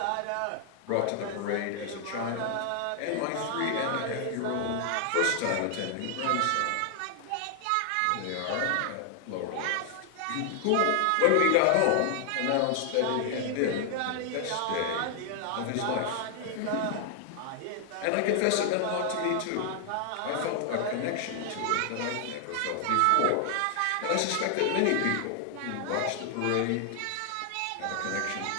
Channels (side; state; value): both; different; correlation 0.00